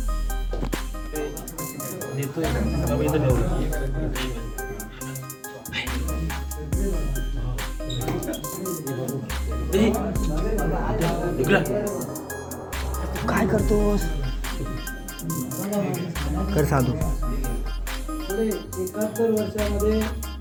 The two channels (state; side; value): identical; both; correlation 1.00